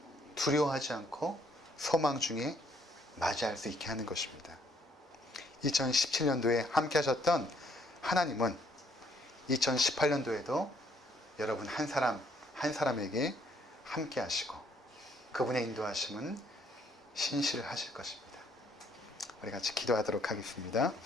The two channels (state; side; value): normal; both; correlation 0.67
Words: 두려워하지 않고 소망 중에 맞이할 수 있게 하는 것입니다. 2017년도에 함께 하셨던 하나님은 2018년도에도 여러분 한 사람에게 함께 하시고 그분의 인도하심은 신실하실 것입니다. 우리 같이 기도하도록 하겠습니다.